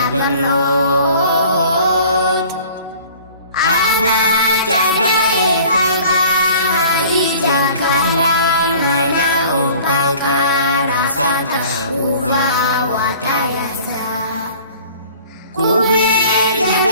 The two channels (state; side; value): inverted; both; correlation -0.48